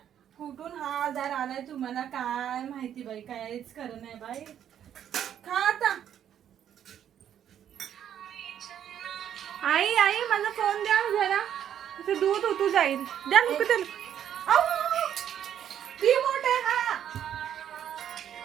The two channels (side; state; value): left; quieter; 9.8 dB